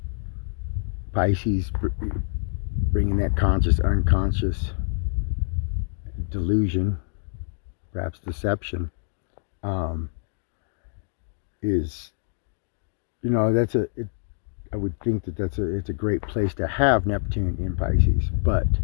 Pisces bringing that conscious, unconscious delusion, perhaps deception, is, I would think that it's a great place to have Neptune in Pisces. But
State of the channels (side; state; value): right; silent; digital silence